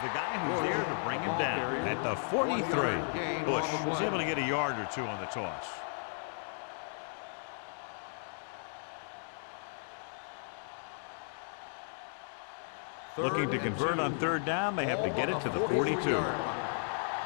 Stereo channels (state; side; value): silent; right; digital silence